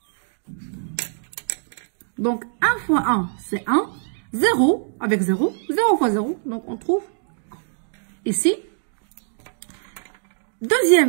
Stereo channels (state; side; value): silent; left; digital silence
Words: Donc, 1 fois 1, c'est 1. 0 avec 0. 0 fois 0. Donc, on trouve 1. Ici,